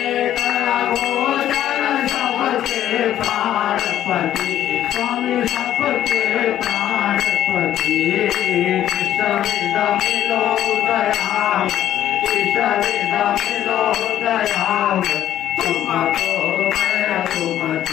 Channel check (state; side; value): quieter; right; 11.8 dB